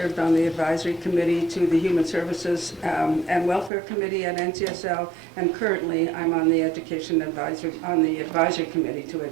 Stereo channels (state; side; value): drops out; left; at 3.7 s